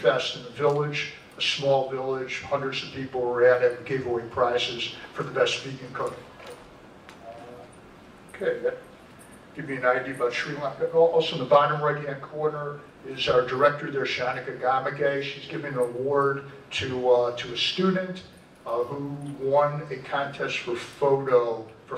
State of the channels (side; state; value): both; identical; correlation 1.00